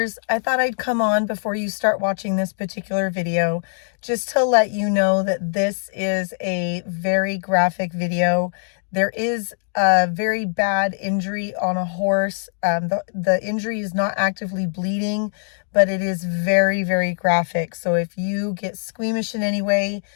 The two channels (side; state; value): right; silent; digital silence